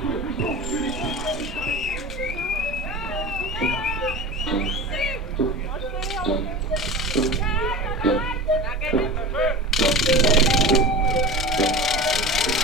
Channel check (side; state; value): both; normal; correlation 0.31